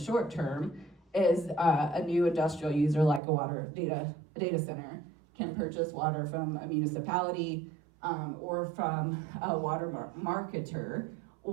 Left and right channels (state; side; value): drops out; left; at 3.2 s